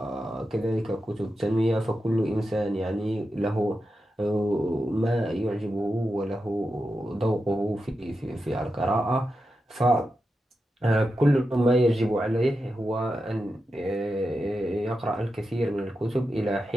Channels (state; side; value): normal; both; correlation 0.89